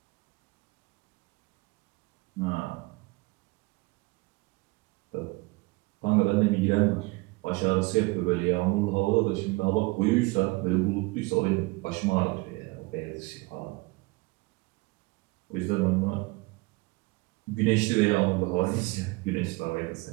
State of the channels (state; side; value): quieter; left; 24.5 dB